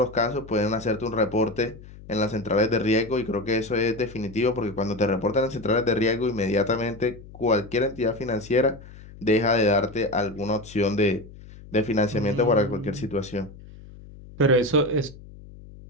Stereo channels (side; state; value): left; noise; hum, 18 dB below the sound